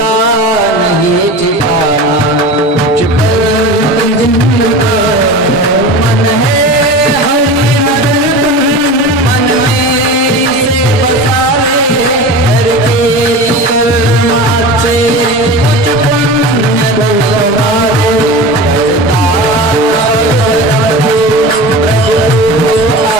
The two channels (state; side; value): normal; both; correlation 0.31